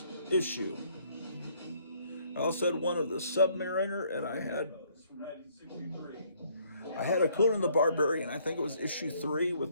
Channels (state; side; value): inverted; both; correlation -0.65